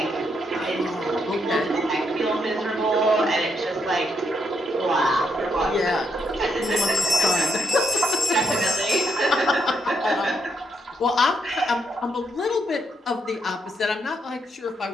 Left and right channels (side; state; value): both; normal; correlation 0.77